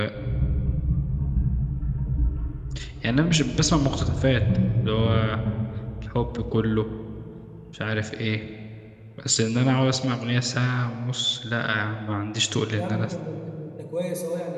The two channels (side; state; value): both; identical; correlation 1.00